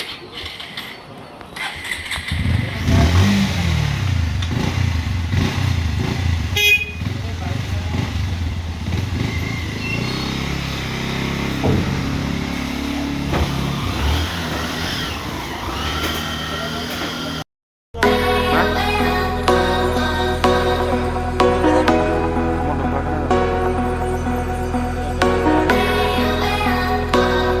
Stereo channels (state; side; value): identical; both; correlation 1.00